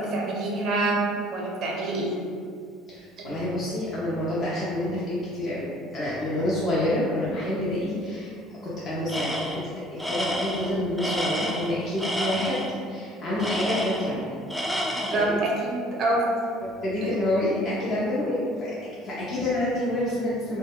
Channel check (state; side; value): normal; both; correlation 0.55